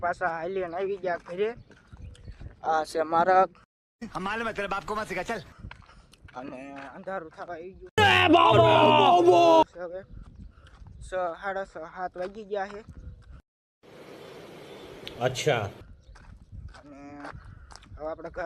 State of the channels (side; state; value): both; identical; correlation 1.00